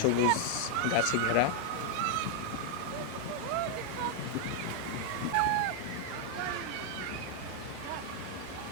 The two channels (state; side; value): different; both; correlation 0.00